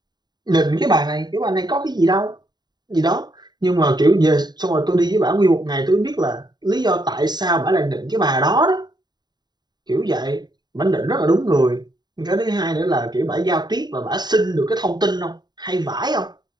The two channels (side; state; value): left; late; 0.20 ms